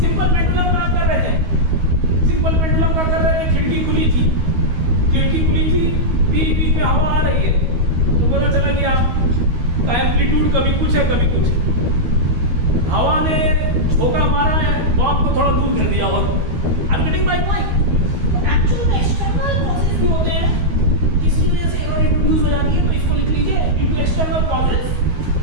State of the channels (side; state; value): left; late; 12 ms